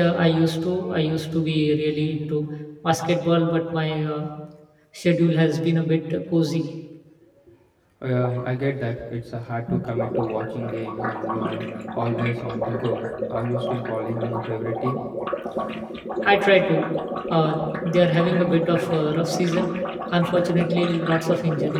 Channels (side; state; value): both; identical; correlation 1.00